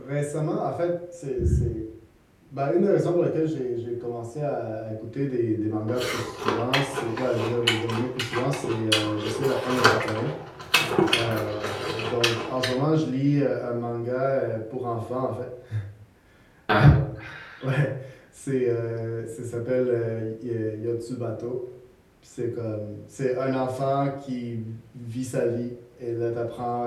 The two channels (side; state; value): both; identical; correlation 1.00